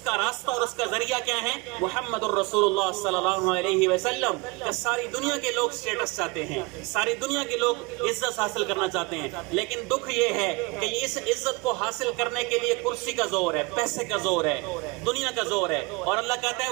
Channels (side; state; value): left; quieter; 26.7 dB